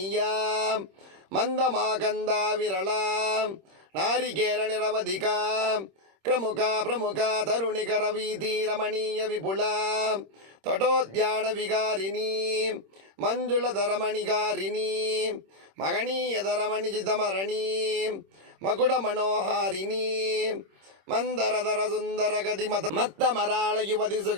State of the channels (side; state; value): left; late; 26 ms